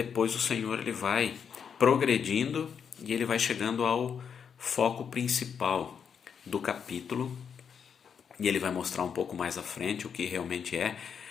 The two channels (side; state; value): right; quieter; 7.1 dB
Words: o Senhor ele vai progredindo e ele vai chegando ao foco principal do capítulo e ele vai mostrar um pouco mais à frente o que realmente é,